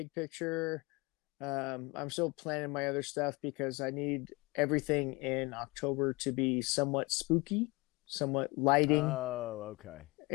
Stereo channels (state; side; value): quieter; right; 25.3 dB